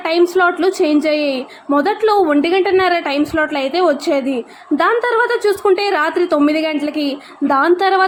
టైం స్లాట్లు చేంజ్ అయ్యాయి. మొదట్లో 1:30 టైం స్లాట్లు అయితే వచ్చేది. దాని తర్వాత చూసుకుంటే రాత్రి 9 గంటలకి, దాని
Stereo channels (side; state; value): both; identical; correlation 1.00